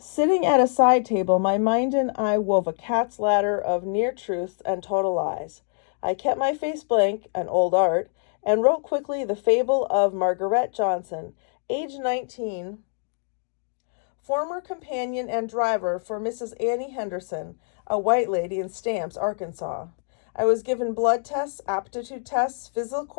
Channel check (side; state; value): right; silent; digital silence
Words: at a side table, my mind and I wove a cat's ladder of near truths and total lies. I kept my face blank, an old art, and wrote quickly the fable of Margaret Johnson, age 19, former companion and driver for Mrs. Annie Henderson, a white lady in Stamps, Arkansas. I was given blood tests, aptitude tests, physical